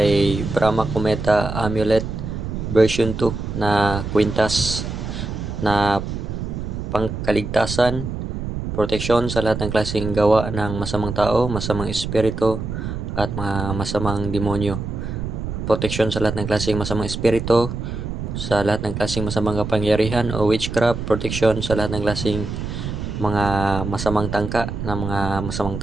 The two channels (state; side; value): noise; right; rumble, 5 dB below the sound